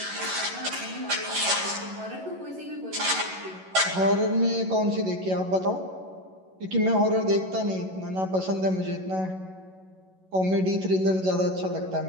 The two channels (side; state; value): left; late; 11 ms